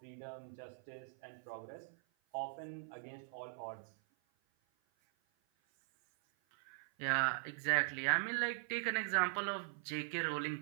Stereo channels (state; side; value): silent; left; 50 dB below the other